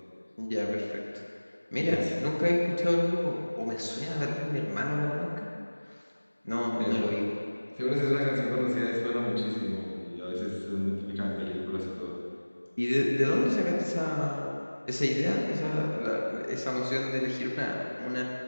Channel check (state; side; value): inverted; both; correlation -1.00